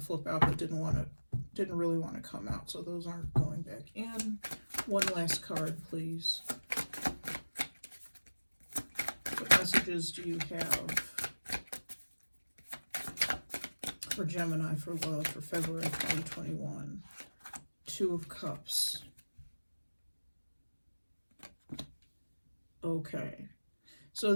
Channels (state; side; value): inverted; both; correlation -1.00